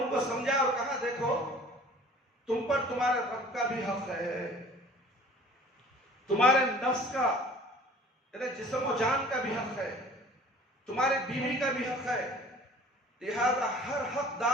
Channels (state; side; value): normal; both; correlation 0.49